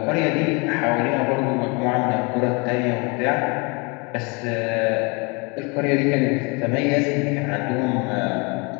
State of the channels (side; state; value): right; quieter; 30.1 dB